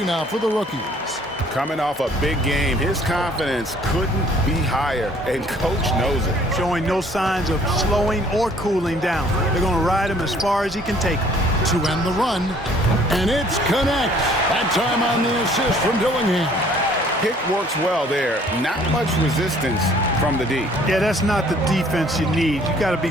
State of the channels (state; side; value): normal; both; correlation 0.58